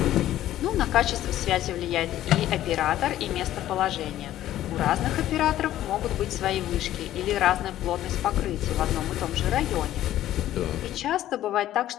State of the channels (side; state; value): right; quieter; 13.1 dB